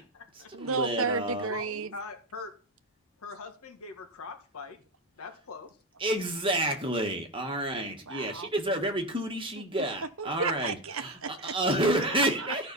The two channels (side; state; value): both; normal; correlation 0.13